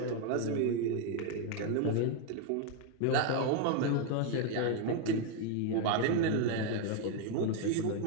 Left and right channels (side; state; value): both; different; correlation 0.01